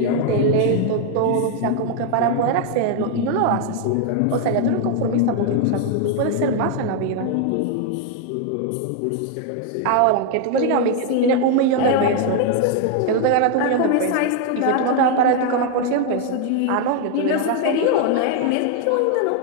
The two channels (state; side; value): different; both; correlation 0.00